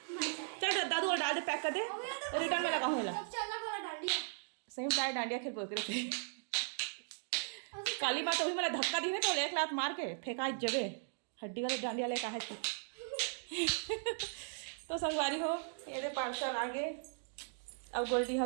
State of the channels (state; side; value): silent; left; digital silence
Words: चल दादू और डाल दे पैक कर दे रिटर्न में लगा हूँ चलना बोला डांडिया सही में डांडिया खेल बोल थे काली माँ तो भी मेरा धक्का दी है तो एक लात मार के फेंका जगह हड्डी वाले डांडिया ले कहा है। तो संगवारी हो ये दे पार्सल आगे अब गोल्डी